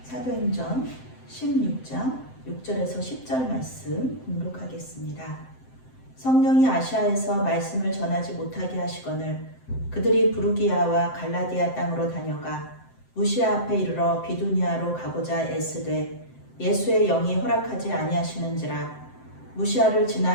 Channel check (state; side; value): late; right; 7.7 ms